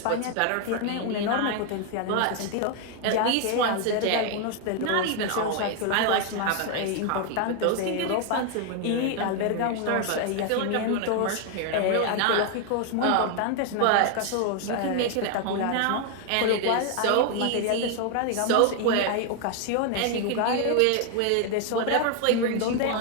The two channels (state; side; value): different; both; correlation 0.01